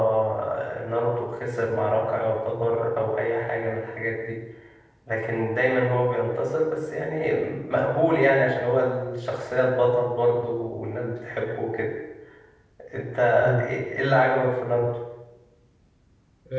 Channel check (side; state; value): both; identical; correlation 1.00